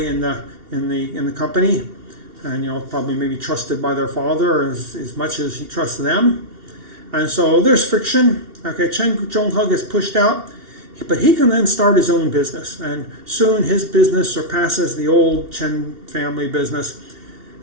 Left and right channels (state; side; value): late; left; 2.7 ms